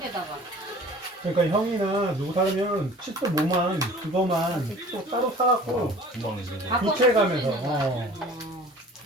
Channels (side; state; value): both; normal; correlation 0.45